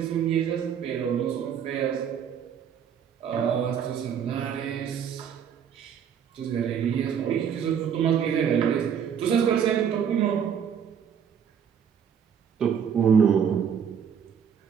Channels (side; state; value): left; quieter; 7.9 dB